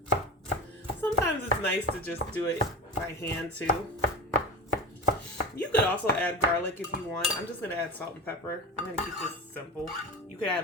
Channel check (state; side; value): normal; both; correlation 0.26